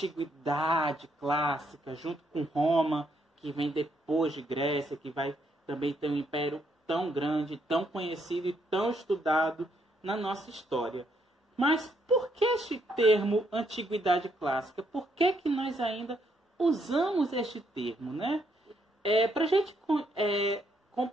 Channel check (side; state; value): both; normal; correlation 0.74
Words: clássica, junto com Roma, que vem depois de Grécia, que vai também ter um império tão grande, tão conhecido e tão estudado na nossa história. Mas por que este termo Antiguidade Clássica? Por que nós ainda usamos este termo, né? Para a gente